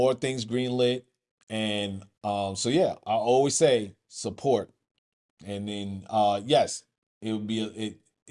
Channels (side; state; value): both; identical; correlation 1.00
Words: things greenlit, and so yeah, I always say support, and then yes, it would be